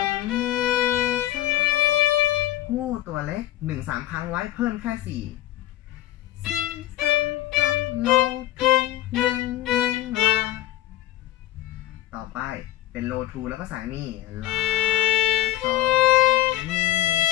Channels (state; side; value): quieter; right; 14.5 dB